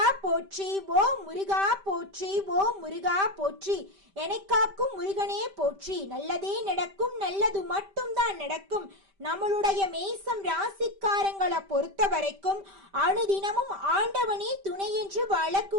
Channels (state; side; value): late; left; 5.1 ms